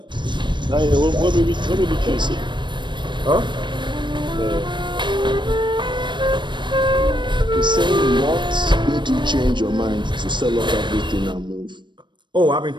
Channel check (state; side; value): late; left; 0.22 ms